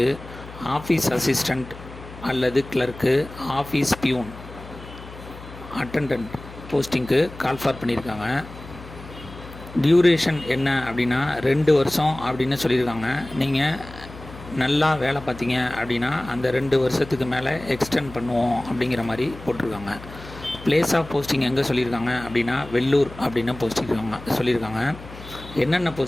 office assistant அல்லது கிளர்க்கு, ஆஃபீஸ் பியூன், அட்டண்டன்ட் போஸ்டிங்க்கு கால்ஃபார் பண்ணியிருக்காங்க. டியூரேஷன் என்ன அப்படின்னா 2 வருஷம் அப்படின்னு சொல்லியிருக்காங்க. நீங்கள் நல்லா வேலை பார்த்தீங்க அப்படின்னா அந்த 2 வருஷத்துக்கு மேலே எக்ஸ்டெண்ட் பண்ணுவோம் அப்படிங்கிற மாதிரி போட்டிருக்காங்க. பிளேஸ் ஆஃப் போஸ்டிங் எங்கே சொல்லியிருக்காங்க அப்படின்னா வெள்ளூர் அப்படின்னு சொல்லியிருக்காங்க. என்னென்ன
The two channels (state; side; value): noise; left; hum, 16 dB below the sound